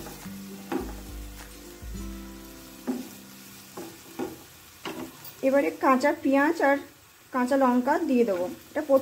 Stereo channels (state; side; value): identical; both; correlation 1.00